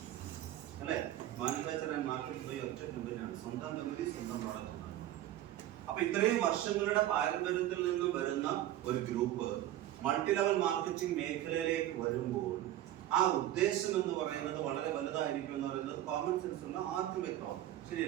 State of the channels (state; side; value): quieter; left; 13.3 dB